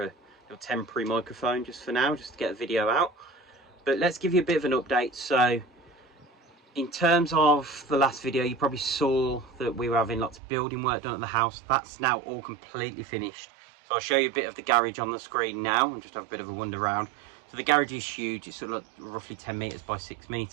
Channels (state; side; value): drops out; left; at 10.4 s